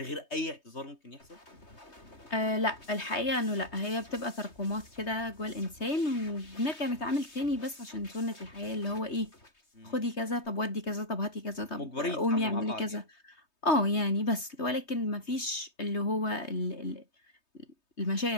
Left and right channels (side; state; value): right; late; 3.2 ms